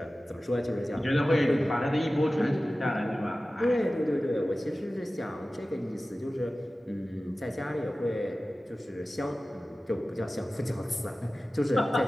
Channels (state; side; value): normal; both; correlation 0.96